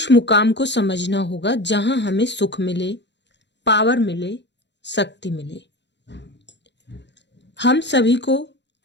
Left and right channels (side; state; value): right; late; 0.51 ms